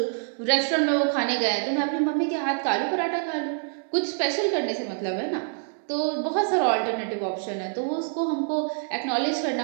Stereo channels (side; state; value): left; silent; digital silence